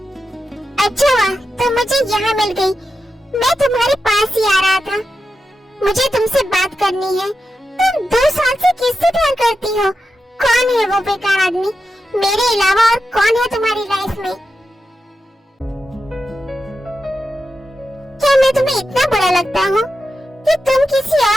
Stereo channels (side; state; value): both; normal; correlation 0.89